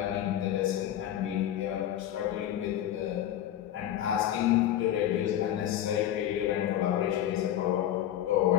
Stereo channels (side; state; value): right; quieter; 11.7 dB